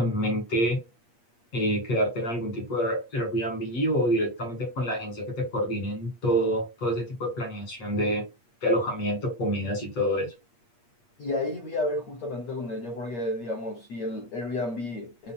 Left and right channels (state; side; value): late; right; 8.4 ms